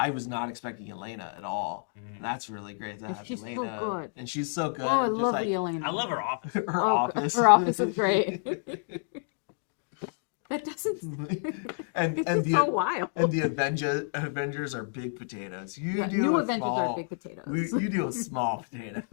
was not expecting Yelena at all. That's really great to And have she's so Yelena, good. and she's so good. Oh, I just love like, Yelena. I love her office. her Oh, office. her office is great. That doesn't. and It's the so wild. and the Avengers are big potatoes. You Yeah, deal new with Avengers small, are big potatoes. You deal with small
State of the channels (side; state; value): right; silent; digital silence